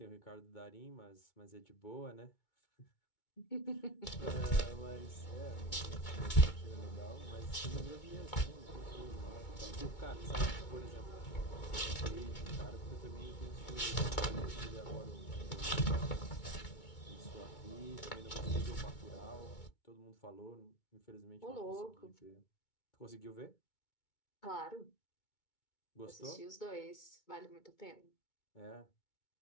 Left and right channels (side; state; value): right; late; 2.2 ms